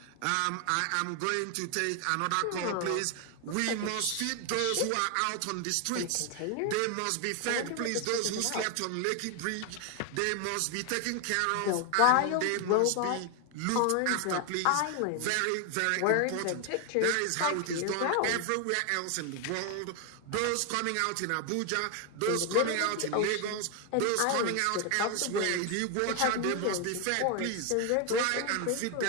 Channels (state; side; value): different; both; correlation 0.01